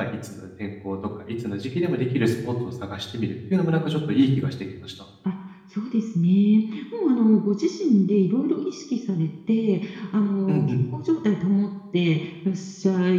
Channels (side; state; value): both; identical; correlation 1.00